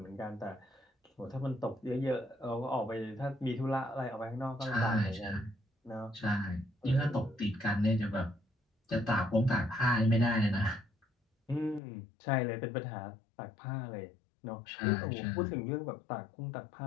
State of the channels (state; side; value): drops out; right; at 11.8 s